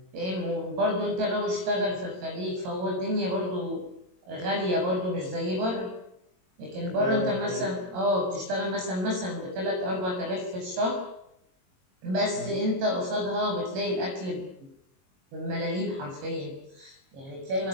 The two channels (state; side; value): late; left; 22 ms